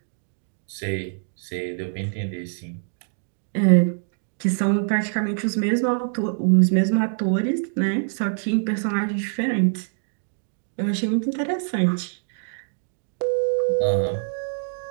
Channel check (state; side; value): silent; left; digital silence